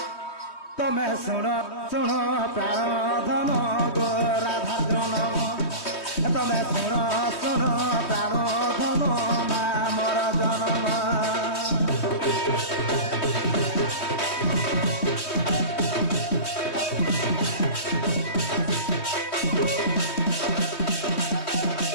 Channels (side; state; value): right; late; 3.2 ms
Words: তুমি শুণ শুণ প্রাণ ধন গো রাধা জনম তুমি শুণ শুণ প্রাণ ধন মা মোর জনম